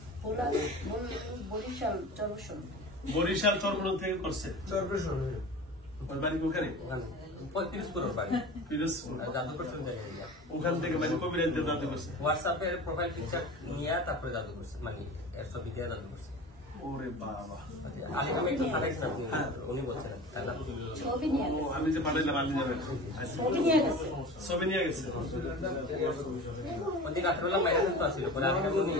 বরিশাল চরবসন। বরিশাল চরমনাই থেকে করছে চরপেশন ওর বাড়ি ওখানে ওখানে 35 করোড় বাড়ি পিরোজপুর। আর জাদু করছেন জায়গায় ওখান থেকে মানে কবিরাজদের জানতে করছে। হোয়াটসঅ্যাপে প্রোফাইল পিকচার নিয়ে তারপরে জাদু করছে মানে এর ছবি দিয়ে জাদু করছে ওরে বাবা, আলিকামে একটু পাঠাইছেন আপনি উনি বলছেন তাই না ছবি নিয়ে ও গেছে আমি যে পাঠাইলাম আপনি যাবেন। ছবি নিয়ে গেছে ছবি নিয়ে গেছে। ওদিন রাত্রেবেলা মাইরা কিন্তু আসছিল পরে আমি উনি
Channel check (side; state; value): both; normal; correlation 0.35